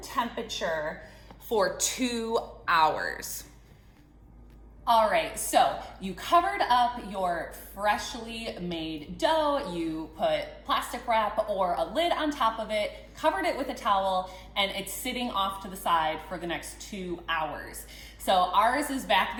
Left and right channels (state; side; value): identical; both; correlation 1.00